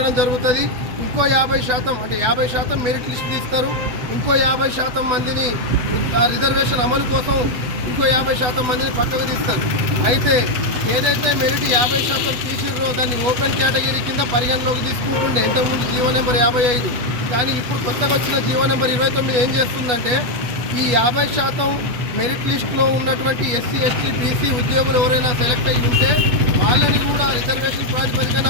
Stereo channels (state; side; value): late; left; 8.0 ms